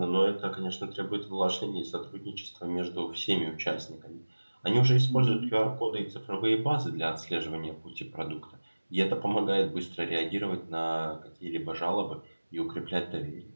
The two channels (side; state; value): both; inverted; correlation -1.00